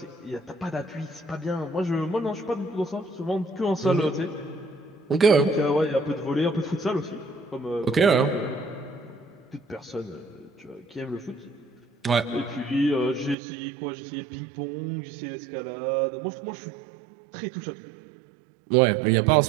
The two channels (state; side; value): drops out; left; at 13.4 s